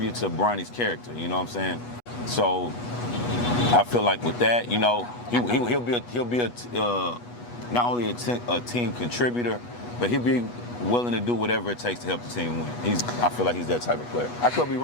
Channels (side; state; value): right; late; 8.2 ms